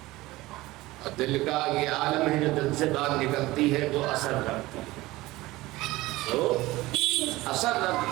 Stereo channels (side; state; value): left; quieter; 19.0 dB